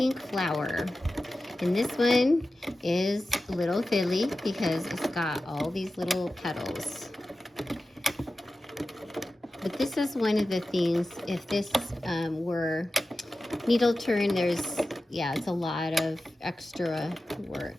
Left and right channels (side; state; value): both; normal; correlation 0.94